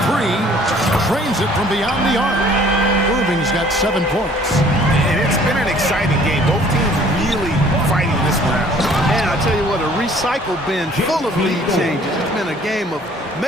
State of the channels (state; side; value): normal; both; correlation 0.55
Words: 3. Trains it from beyond the arc. Irving's got 7 points. And it's been an exciting game. Both teams really fighting this one out. And I tell you what, a recycle bin full of lead changes. It's been a game of